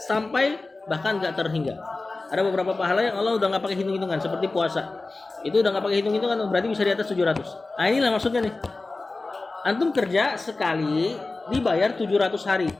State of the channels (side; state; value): right; quieter; 3.4 dB